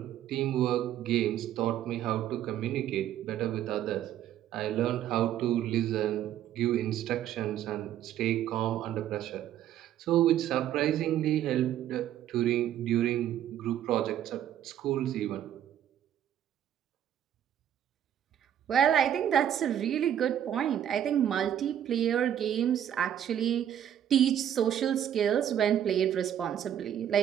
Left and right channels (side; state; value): left; quieter; 10.6 dB